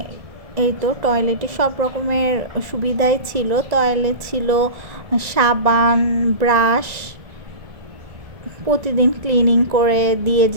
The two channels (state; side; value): late; left; 1.7 ms